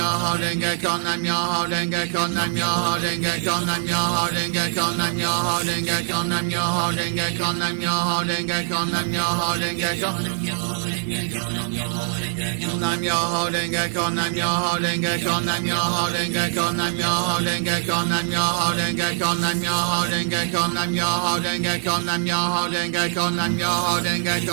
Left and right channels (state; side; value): silent; left; 56 dB below the other